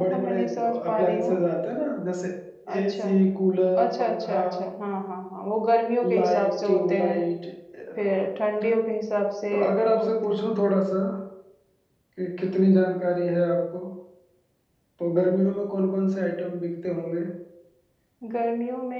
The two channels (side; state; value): both; identical; correlation 1.00